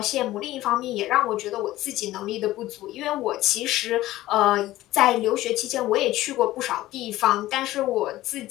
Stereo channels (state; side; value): quieter; right; 16.0 dB